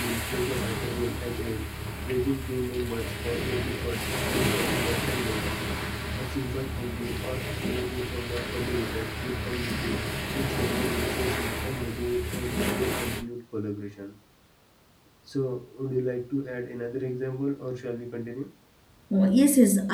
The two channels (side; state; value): both; identical; correlation 1.00